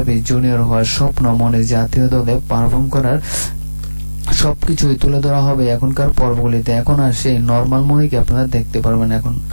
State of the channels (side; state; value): both; inverted; correlation -1.00